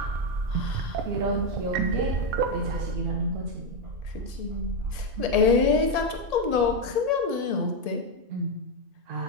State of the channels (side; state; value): left; late; 1.8 ms